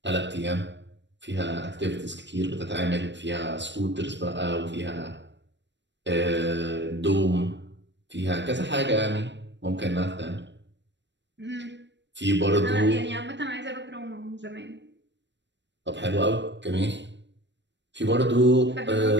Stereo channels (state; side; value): late; left; 0.52 ms